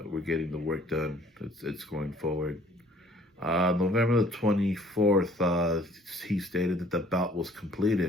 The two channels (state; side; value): normal; both; correlation 0.56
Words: work done. It's going forward. November the 24th, he stated that the belt was